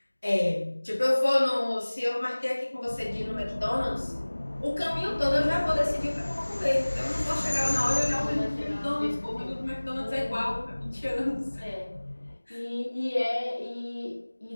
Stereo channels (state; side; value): inverted; both; correlation -1.00